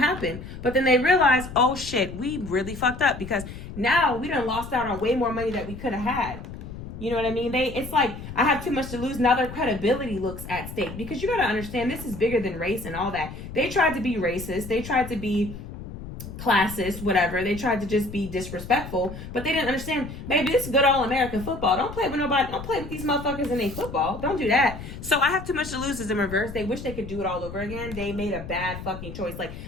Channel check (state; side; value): noise; left; rumble, 11 dB below the sound